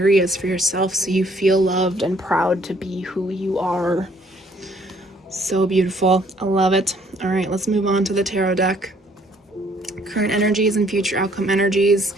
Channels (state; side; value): normal; both; correlation 0.63